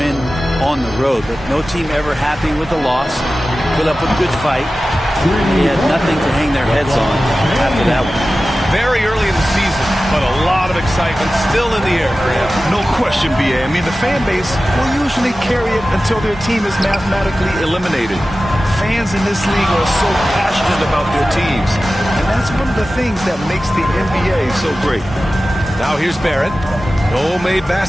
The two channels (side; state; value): both; normal; correlation 0.95